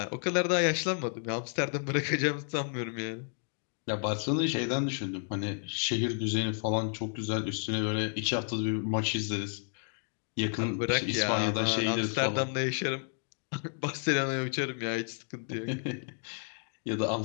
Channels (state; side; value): silent; right; 57 dB below the other